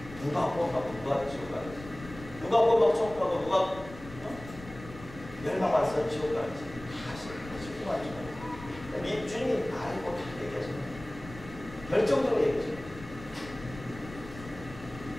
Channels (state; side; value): noise; left; rumble, 15 dB below the sound